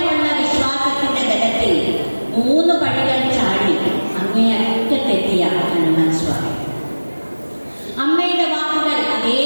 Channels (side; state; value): both; inverted; correlation -1.00